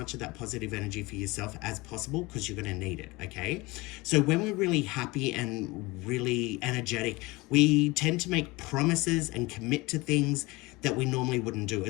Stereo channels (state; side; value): quieter; right; 22.8 dB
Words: of that positive energy for yourself as possible because you're going to need it, okay? So when we're really happy and really energetic, we tend to make promises and commit to things that we normally wouldn't do.